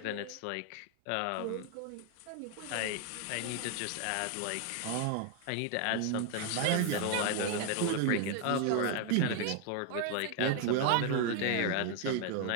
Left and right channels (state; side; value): different; both; correlation 0.01